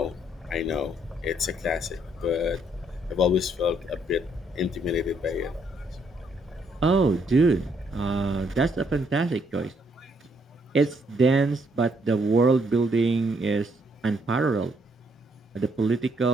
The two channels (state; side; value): normal; both; correlation 0.71